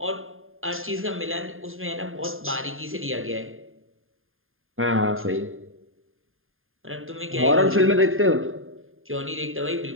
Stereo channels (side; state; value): left; late; 0.60 ms